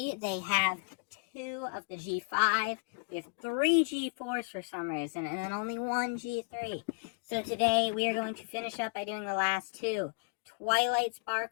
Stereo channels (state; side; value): quieter; right; 34.5 dB